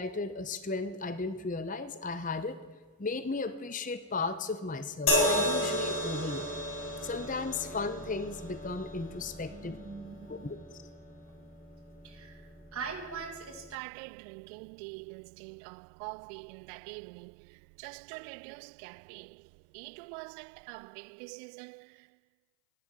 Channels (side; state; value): left; drops out; at 13.8 s